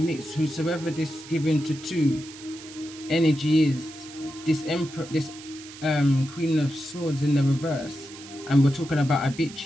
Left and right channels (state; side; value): noise; right; hiss, 16 dB below the sound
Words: Whosoever this given to 2 energy is, this Emperor, this Queen of Swords in the reverse, and we're talking about a